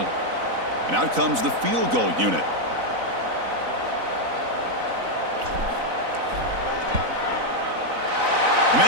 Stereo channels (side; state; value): left; late; 4.0 ms